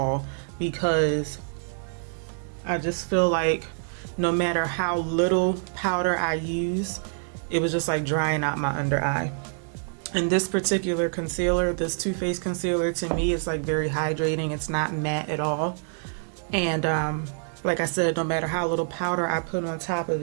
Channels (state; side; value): silent; left; digital silence